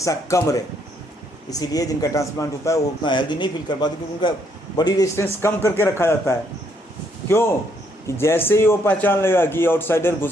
कम रहे। इसीलिए जिनका ट्रांसप्लांट होता है वो उतना हेल्दी नहीं फील कर पाते, क्योंकि उनका बॉडी रेजिस्टेंस कम करके रखा जाता है। क्यों? कि जैसे ही वो पहचान लेगा कि आउटसाइडर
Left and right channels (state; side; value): normal; both; correlation 0.71